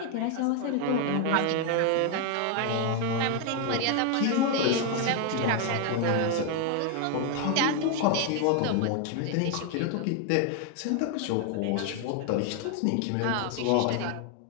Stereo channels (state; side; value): different; both; correlation 0.01